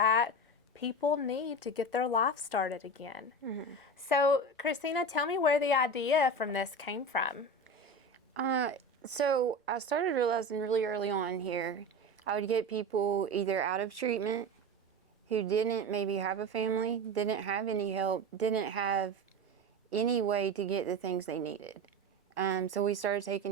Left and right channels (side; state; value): both; normal; correlation 0.26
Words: people need to get their life started again. Mm-hmm. So, Christina, tell me where the idea from this came from. So I started realizing really early on here, I would get people either out of treatment who didn't maybe have a family, didn't have any help, didn't have any way to get the things they needed. So we started